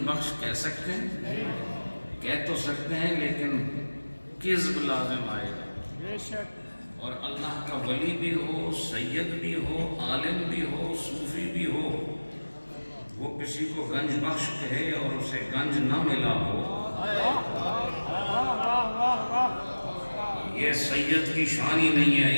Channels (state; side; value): inverted; both; correlation -1.00